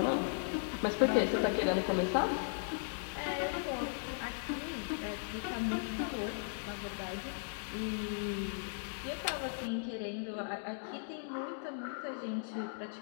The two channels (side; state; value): right; silent; digital silence